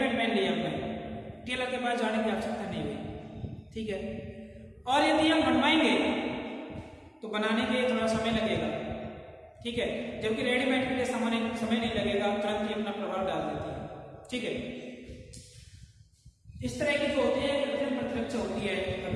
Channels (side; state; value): both; identical; correlation 1.00